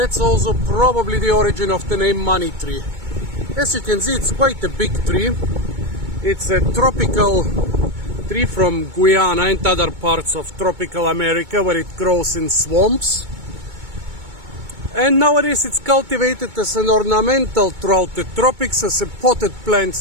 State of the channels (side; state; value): left; late; 2.2 ms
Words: also probably the origin of the name money tree. As you can see, it's quite a big tree. It's a tropical tree from Guyana and other parts of tropical America, where it grows in swamps. And nowadays it's cultivated as an ornamental throughout the tropics, as a potted plant